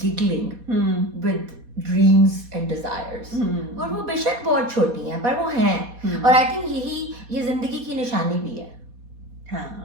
giggling with dreams and desires, اور وہ بے شک بہت چھوٹی ہیں پر وہ ہیں. اور آئی تھنک یہی یہ زندگی کی نشانی بھی ہے.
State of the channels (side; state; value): left; late; 4.2 ms